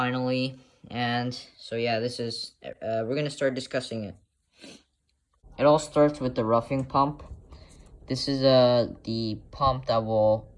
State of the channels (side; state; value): both; identical; correlation 1.00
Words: And so yeah, we're gonna start discussing it. It all starts with the roughing pump. This is the pump that will